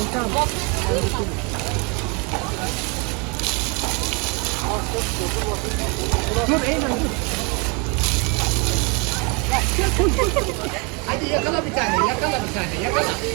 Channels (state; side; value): quieter; left; 31.7 dB